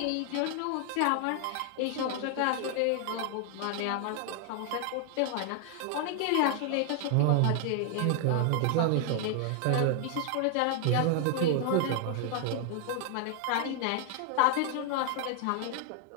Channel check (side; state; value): both; different; correlation 0.00